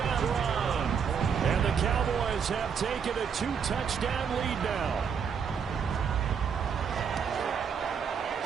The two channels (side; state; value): left; quieter; 6.8 dB